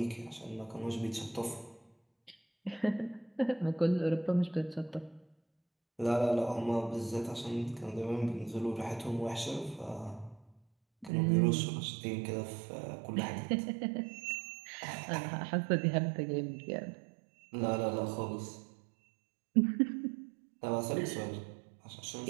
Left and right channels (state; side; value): drops out; left; at 11.1 s